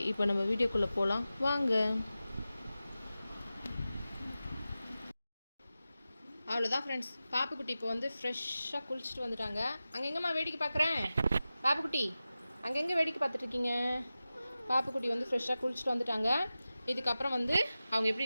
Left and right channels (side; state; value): both; inverted; correlation -0.94